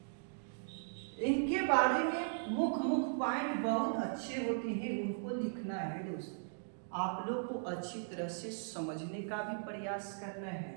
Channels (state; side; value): silent; left; digital silence